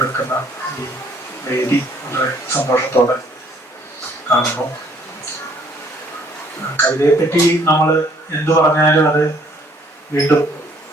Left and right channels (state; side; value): normal; both; correlation 0.61